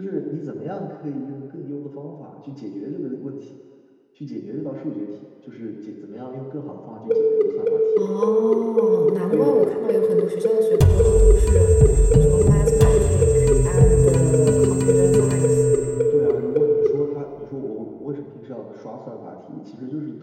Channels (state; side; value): identical; both; correlation 1.00